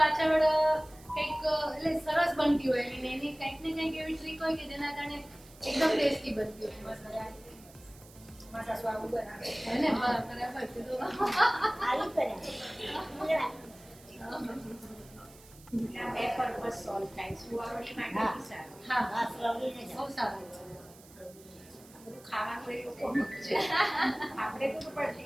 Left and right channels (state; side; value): noise; right; hiss, 23 dB below the sound